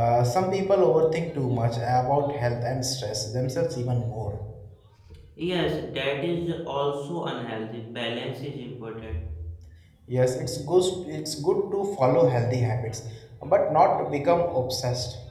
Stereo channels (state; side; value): identical; both; correlation 1.00